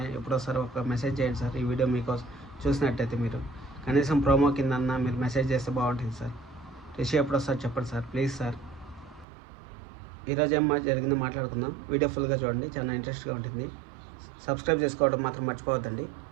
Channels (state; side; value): drops out; left; at 9.2 s